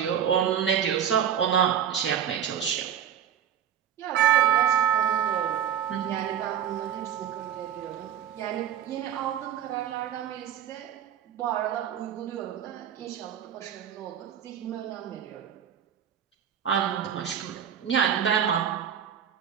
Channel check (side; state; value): left; quieter; 9.3 dB